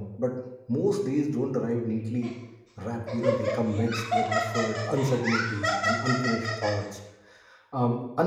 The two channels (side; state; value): both; identical; correlation 1.00